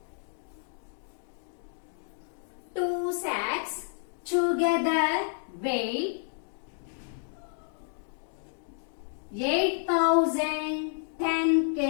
2 sacks together weigh 8,010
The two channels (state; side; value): silent; right; digital silence